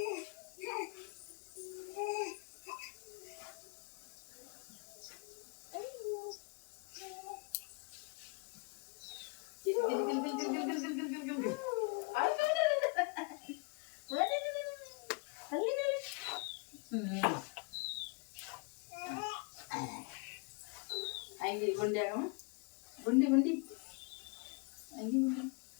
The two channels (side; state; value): right; quieter; 30.7 dB